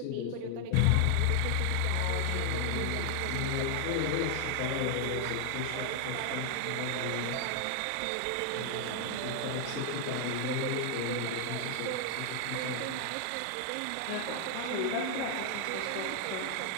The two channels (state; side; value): different; both; correlation 0.00